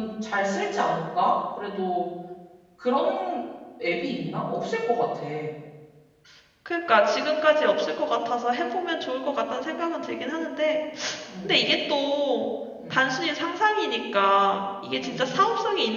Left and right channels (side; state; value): both; identical; correlation 1.00